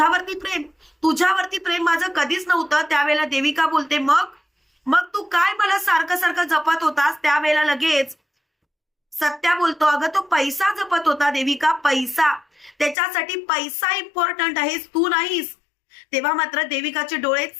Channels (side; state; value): right; drops out; at 13.0 s